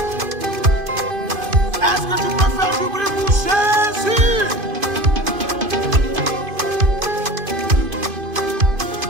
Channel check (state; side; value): late; left; 2.5 ms